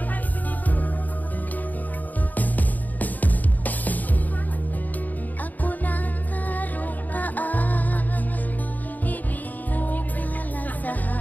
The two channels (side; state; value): right; late; 0.082 ms